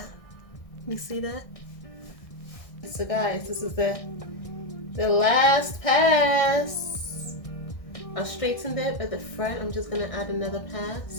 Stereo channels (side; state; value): right; late; 1.6 ms